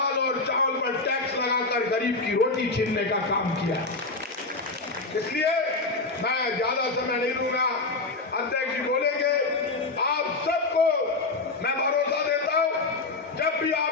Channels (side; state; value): right; quieter; 3.5 dB